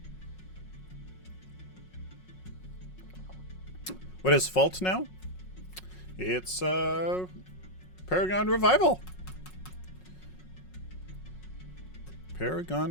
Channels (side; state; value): right; late; 5.5 ms